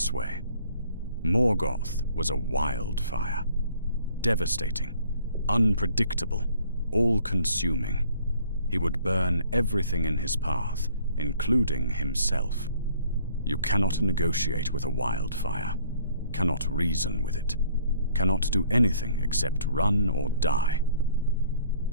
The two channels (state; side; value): inverted; both; correlation -0.58